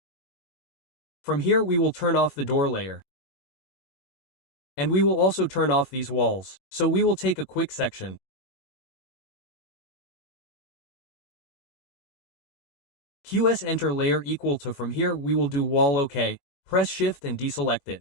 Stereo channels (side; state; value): right; late; 21 ms